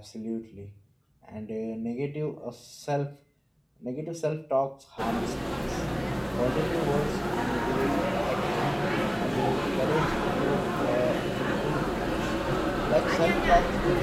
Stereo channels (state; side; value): identical; both; correlation 1.00